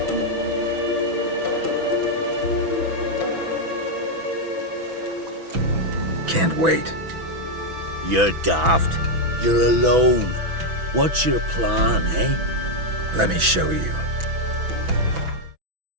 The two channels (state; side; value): late; left; 6.1 ms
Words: Can't wait. You're daft. You're alone. What's your plan, eh? Let me show you.